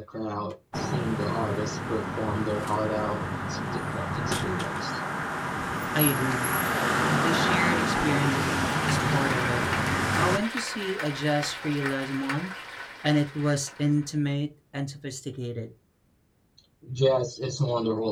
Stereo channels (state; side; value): identical; both; correlation 1.00